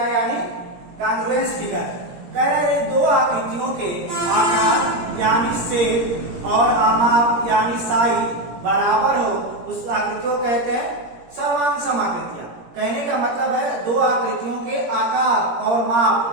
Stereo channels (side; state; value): left; late; 17 ms